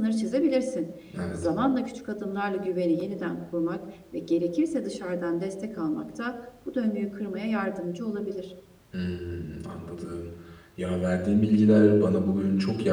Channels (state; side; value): identical; both; correlation 1.00